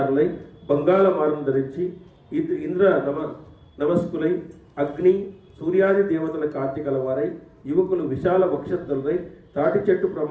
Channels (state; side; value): identical; both; correlation 1.00